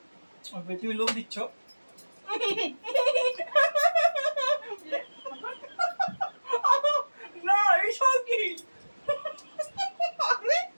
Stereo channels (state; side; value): inverted; both; correlation -1.00